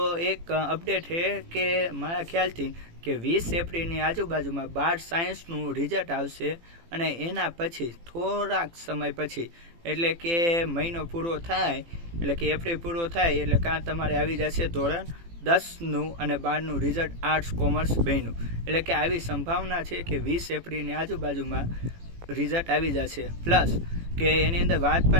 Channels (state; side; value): late; left; 18 ms